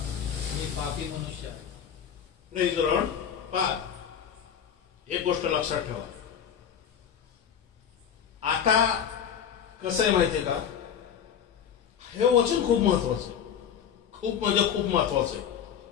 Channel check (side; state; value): right; quieter; 8.3 dB